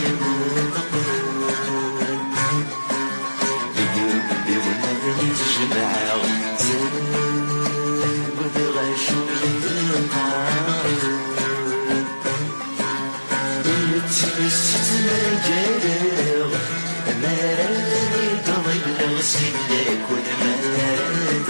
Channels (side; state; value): both; inverted; correlation -1.00